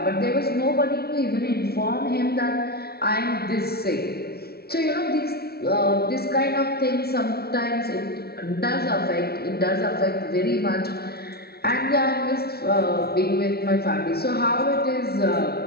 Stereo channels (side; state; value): right; late; 0.46 ms